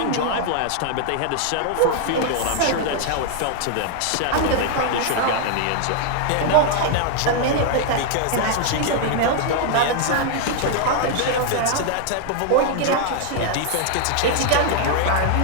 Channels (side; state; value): both; different; correlation 0.00